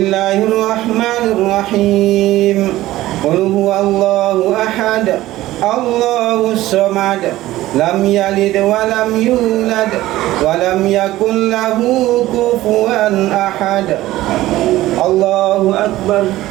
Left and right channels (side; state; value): left; quieter; 16.1 dB